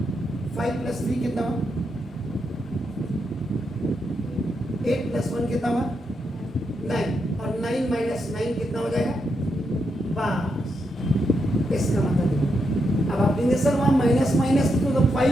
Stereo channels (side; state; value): both; normal; correlation 0.82